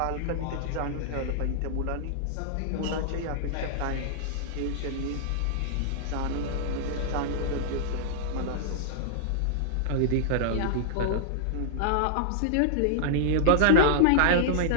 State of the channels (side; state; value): both; different; correlation -0.01